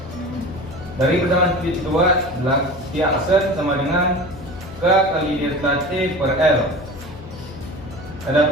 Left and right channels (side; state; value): left; noise; hum, 17 dB below the sound